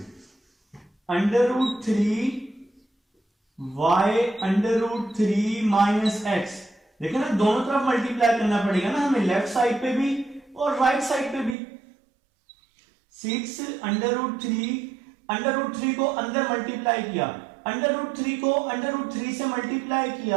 √3 y √3 minus x, देखिए ना, दोनों तरफ मल्टीप्लाई करना पड़ेगा ना हमें, लेफ्ट साइड पे भी और राइट साइड पे भी। 6 अंडर रूट 3 को अंदर मल्टीप्लाई किया, अंडर रूट 3 को अंडर रूट 3 से मल्टीप्लाई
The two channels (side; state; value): left; drops out; at 11.6 s